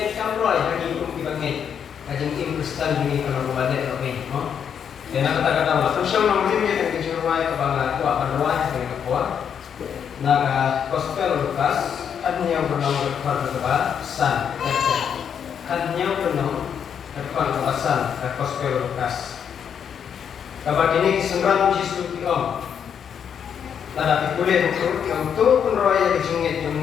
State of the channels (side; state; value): right; quieter; 7.9 dB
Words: kamroy lagi pun dibangit. Kejengit Kristen ini kalau berbalik lebih, no. Dan kata-kata lah. Terusnya namanya yang kejengit kebangan kuat penroy dengan kuat. Naga gospel Lukas. Hanya bernama kepada San, hanya bernama kepada San, gospel Lukas. Kabar ini kesenggara Yesus Tuhan. Tanda pikulir untuk penroya kejengit